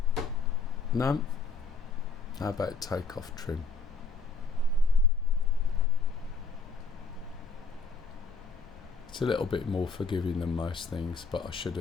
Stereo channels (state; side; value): quieter; right; 4.3 dB